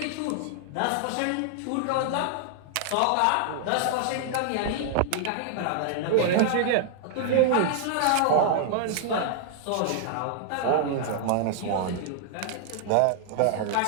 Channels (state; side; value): different; both; correlation -0.01